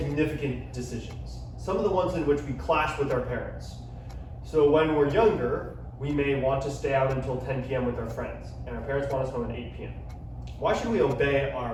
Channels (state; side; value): identical; both; correlation 1.00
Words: decisions? Some of the ones in which we clash with our parents. So when we're younger, we may want to stay out until 10 p.m. with our friends, and our parents want us home at 8 p.m. Why should we obey